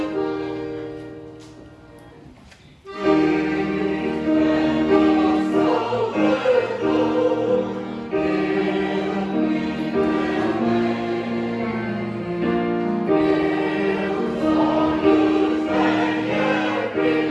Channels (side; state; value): both; identical; correlation 1.00